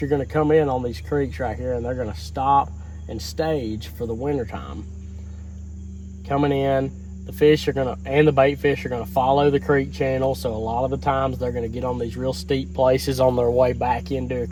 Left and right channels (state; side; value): identical; both; correlation 1.00